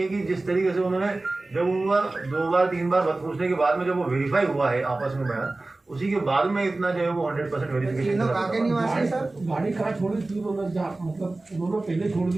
कि जिस तरीके से उन्होंने जब उनका 2 बार 3 बार पूछने के बाद में जब वो वेरीफाई हुआ है आपस में बयान उसी के बाद में इतना जो है वो 100% वेरिफिकेशन। तीनों कहाँ के निवासी हैं सर? गाड़ी कहाँ छोड़ी थी उन्होंने, जहाँ मतलब उन्होंने पहले छोड़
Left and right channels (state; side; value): quieter; left; 3.0 dB